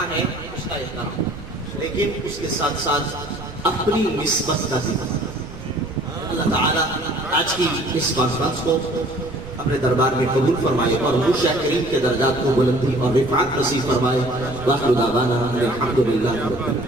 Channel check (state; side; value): noise; right; rumble, 14 dB below the sound